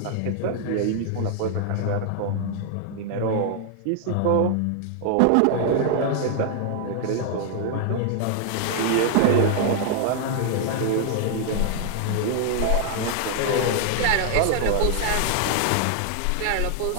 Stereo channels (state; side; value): different; both; correlation 0.00